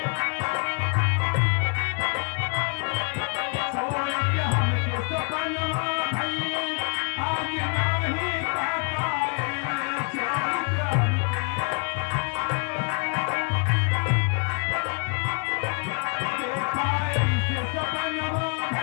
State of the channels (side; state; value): right; quieter; 39.2 dB